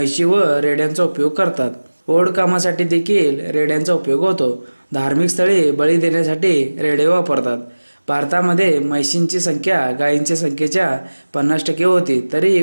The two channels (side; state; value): both; inverted; correlation -1.00